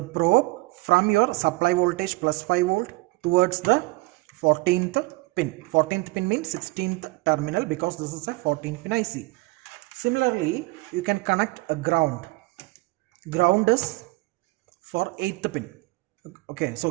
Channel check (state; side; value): quieter; left; 23.2 dB